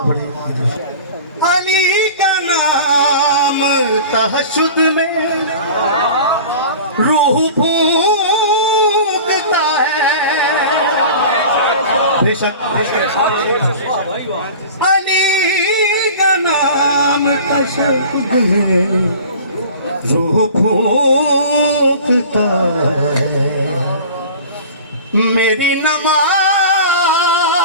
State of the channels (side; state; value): both; inverted; correlation -0.39